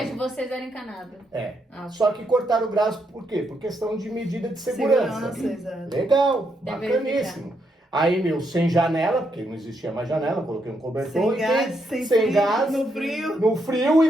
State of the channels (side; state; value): both; normal; correlation 0.78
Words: de ano. vocês era encanado. É. Ah, Só que cortaram o gás por quê? Por questão de medida de segurança. exato. Legal, Deve bacaníssimo. Aí, meu, sem janela, porque não existia mais janela, coloquei um cobertor Sem gás, sem frio, gás, no frio. no frio